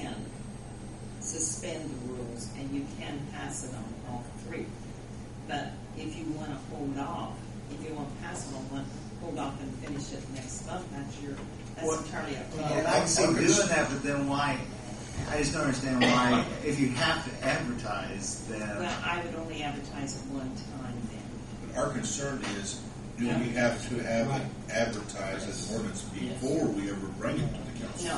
suspend the rules and you can pass it on all three. But if you want to hold off, if you want to pass it on one, hold off and finish it next month, that's What- entirely up to you. and I can see doing that, but then why? I just don't understand why. If you have to advertise, then Well, I would only advertise it one time then. But our concern is, do we have to have it advertised as an ordinance before we ever bring it to the council?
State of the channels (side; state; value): both; identical; correlation 1.00